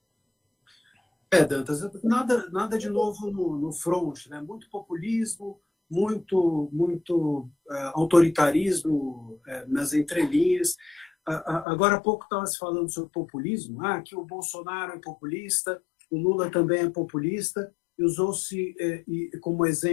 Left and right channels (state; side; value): drops out; right; at 11.7 s